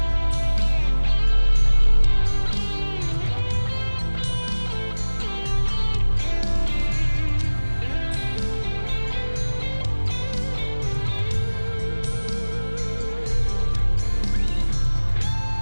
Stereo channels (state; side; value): inverted; both; correlation -1.00